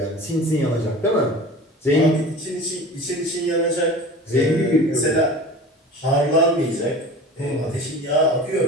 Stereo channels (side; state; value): both; normal; correlation 0.38